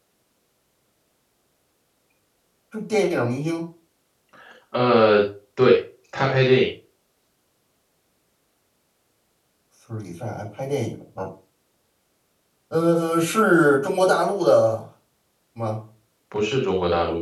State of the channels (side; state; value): both; identical; correlation 1.00